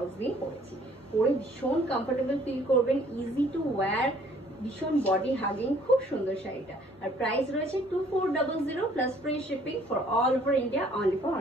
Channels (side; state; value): both; normal; correlation 0.59